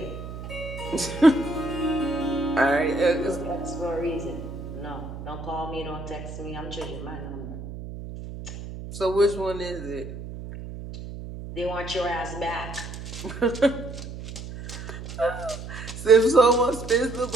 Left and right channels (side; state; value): right; noise; hum, 10 dB below the sound